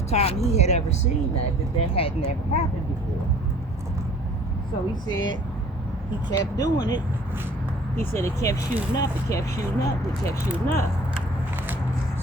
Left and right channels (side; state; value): both; normal; correlation 0.51